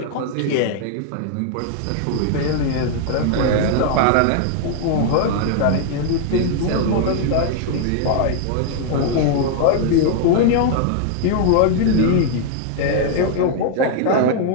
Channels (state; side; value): different; both; correlation 0.00